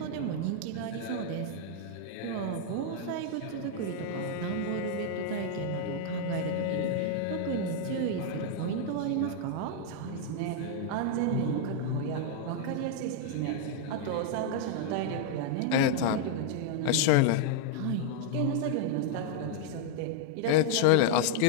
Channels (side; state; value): both; different; correlation -0.01